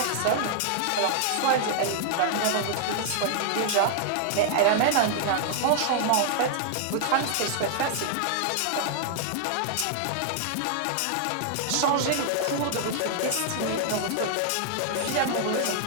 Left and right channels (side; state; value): both; different; correlation -0.01